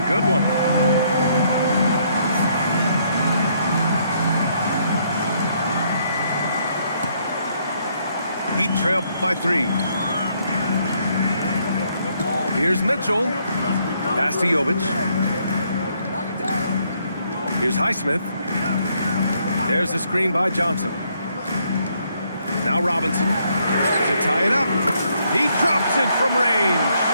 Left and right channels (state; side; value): inverted; both; correlation -0.71